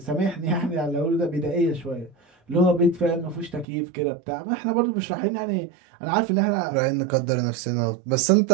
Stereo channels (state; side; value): drops out; left; at 3.7 s